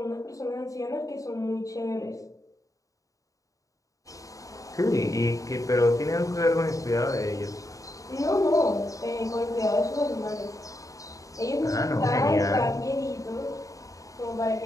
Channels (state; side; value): late; right; 0.16 ms